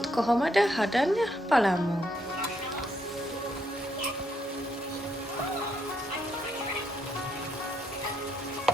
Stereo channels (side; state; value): both; normal; correlation 0.75